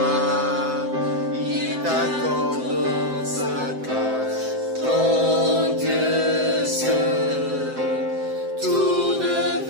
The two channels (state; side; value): late; left; 7.7 ms